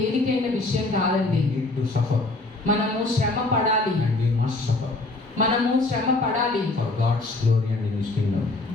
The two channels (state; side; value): quieter; right; 3.1 dB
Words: విషయం కాదండి. We need to suffer, మనము శ్రమ పడాలి. and we must suffer మనము శ్రమ పడాలి. for God's glory and in His kingdom.